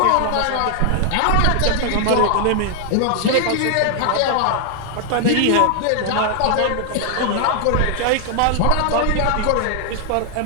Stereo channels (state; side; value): different; both; correlation 0.00